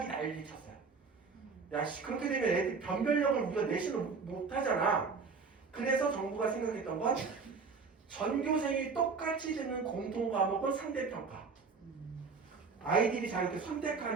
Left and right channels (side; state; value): left; quieter; 4.9 dB